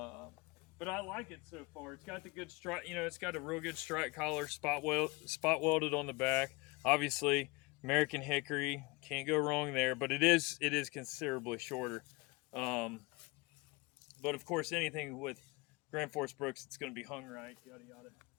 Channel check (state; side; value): quieter; right; 25.1 dB